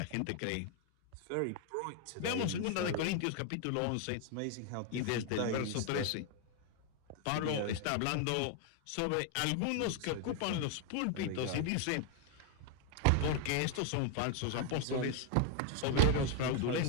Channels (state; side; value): different; both; correlation 0.00